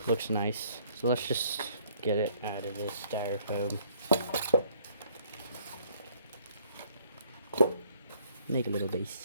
Looks nice. So let's just get it out of this styrofoam. Make a little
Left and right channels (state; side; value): inverted; both; correlation -0.62